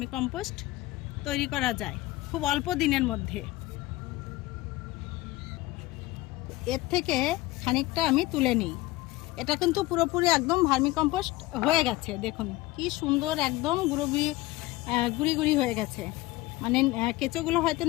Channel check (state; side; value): quieter; right; 19.0 dB